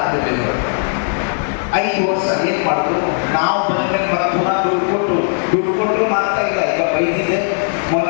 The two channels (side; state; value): right; silent; 61 dB below the other